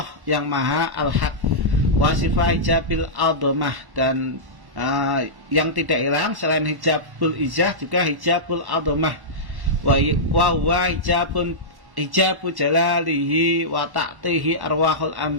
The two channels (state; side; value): late; left; 1.1 ms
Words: yang maha al-haq, wa sifat hijabil a'dzamah, dan yang tidak hilang selain hijabul ijah juga hijabul a'dzamah, wa huwa hijabu jalalihi wa ta'tihi arwahul